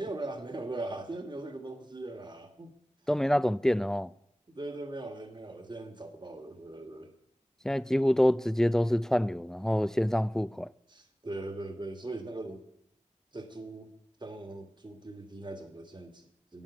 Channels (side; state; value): both; normal; correlation 0.97